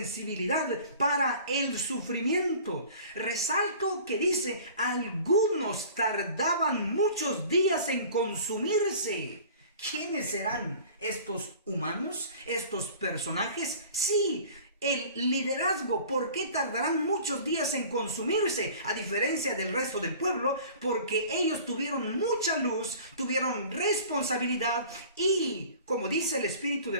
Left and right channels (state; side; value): inverted; both; correlation -0.45